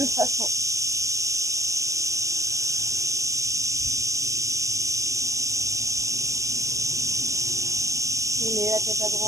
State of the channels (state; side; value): late; left; 0.16 ms